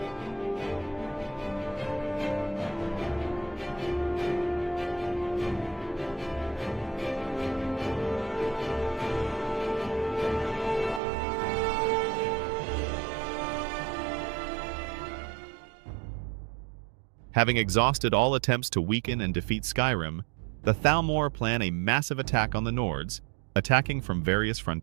Having exhausted all attempts to weaken and defeat Skyrim, the Thalmor plan a massive attack on the Nords, attacking from various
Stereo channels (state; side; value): drops out; left; at 11.0 s